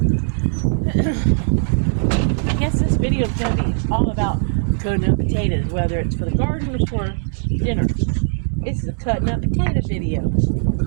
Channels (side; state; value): left; silent; 66 dB below the other